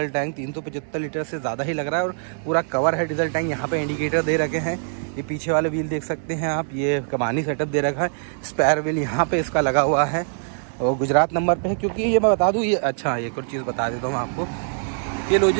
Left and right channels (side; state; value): left; silent; digital silence